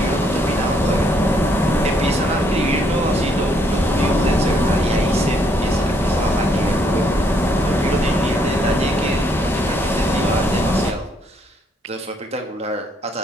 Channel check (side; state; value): both; normal; correlation 0.70